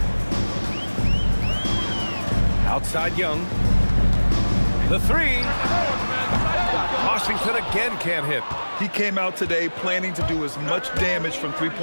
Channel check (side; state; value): both; inverted; correlation -1.00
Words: Outside Young. The 3. Washington again can't hit. He came out today planning to do as much damage from